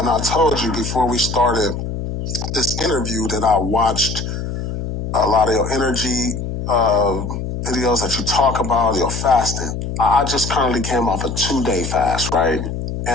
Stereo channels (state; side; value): noise; left; hum, 5 dB below the sound